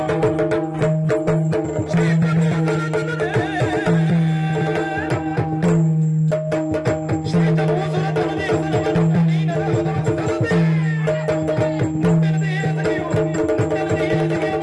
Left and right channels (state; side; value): identical; both; correlation 1.00